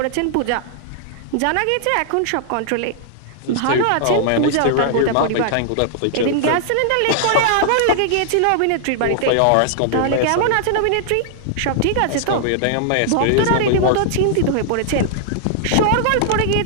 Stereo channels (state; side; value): different; both; correlation -0.01